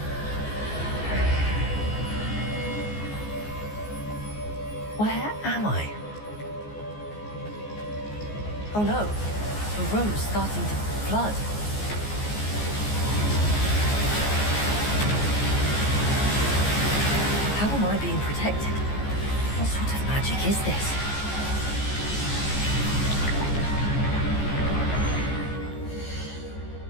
Where am I? Oh no, the room's starting to flood. How am I being protected? What sort of magic is this?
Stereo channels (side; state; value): right; late; 14 ms